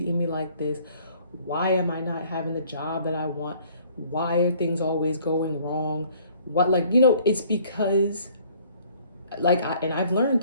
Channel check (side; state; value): both; inverted; correlation -0.58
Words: me like this? Why am I not having the job that I want? Why are things always going wrong? It's because, and I've learned